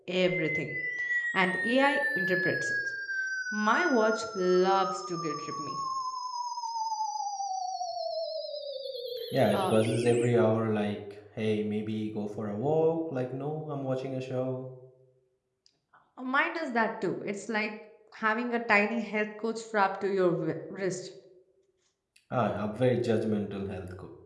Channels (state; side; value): identical; both; correlation 1.00